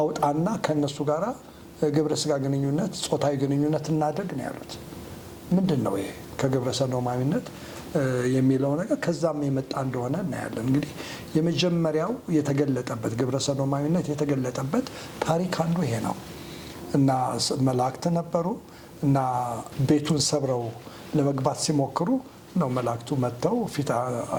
ከነሱ ጋራ ግብረ ስጋ ግንኙነት ጾታዊ ግንኙነት እናድርግ ነው ያሉት። ምንድን ነው ይሄ ከግብረ ሰዶማዊነት የሚለው ነገር ከዛም የመጣ እንደሆነ እናያለን። እንግዲህ የመጀመሪያው የተገለጠበት ግብረ ሰዶማዊነት የተገለጠበት ታሪክ አንዱ ይሄ ነው እና መላእክት ነበሩ እና ቤቱን ሰብረው ለመግባት ሲሞክሩ ነው መላእክቱ መጥተው ፊት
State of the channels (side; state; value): both; identical; correlation 1.00